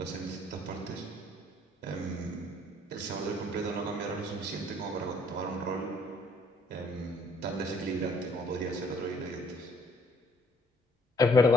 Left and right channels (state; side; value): normal; both; correlation 0.62